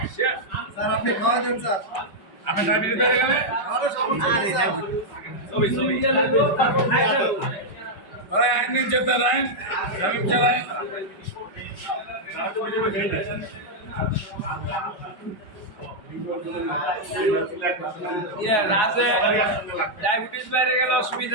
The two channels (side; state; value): right; late; 5.2 ms